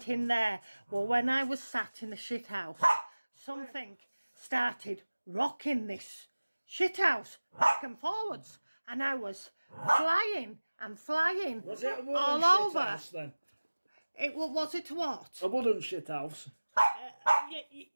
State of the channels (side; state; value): both; inverted; correlation -1.00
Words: in there. Well, when I was sat in the shithouse, something started rocking this shithouse back and forwards, and I was flying and flying. Was it a wooden all over? Shithouse then? Was it what? A wooden shithouse.